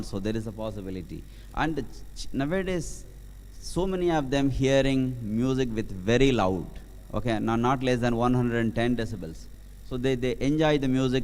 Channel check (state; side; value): identical; both; correlation 1.00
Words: there is a possibility. And nowadays, so many of them hearing music with very loud, okay, not less than 110 decibels. So they enjoy the